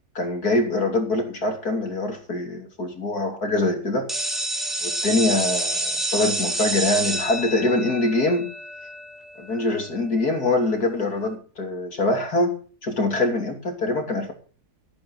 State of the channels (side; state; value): both; normal; correlation 0.22